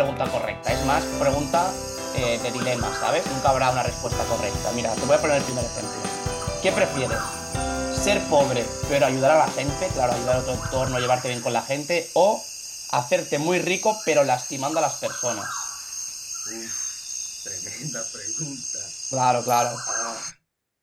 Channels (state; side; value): identical; both; correlation 1.00